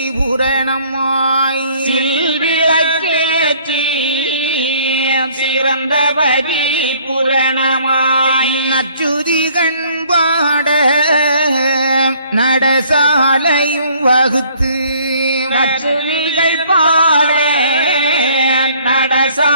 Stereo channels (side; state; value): both; inverted; correlation -0.58